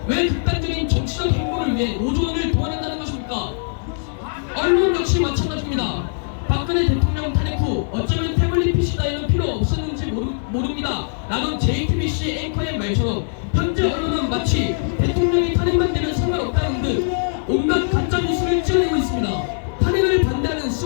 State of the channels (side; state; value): right; silent; 65 dB below the other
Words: 왜 극단적인 정치적 행보를 위해 노조원을 동원한다는 것입니까? 언론 역시 마찬가지입니다. 박근혜 대통령 탄핵 후 어쩌면 태블릿 PC 따위는 필요 없었는지 모릅니다 라는 JTBC 앵커의 말처럼 현재 언론은 마치 대통령이 탄핵만 되면 상관없다는 듯 온갖 가짜뉴스를 찍어내고 있습니다. 탄핵을 반대하는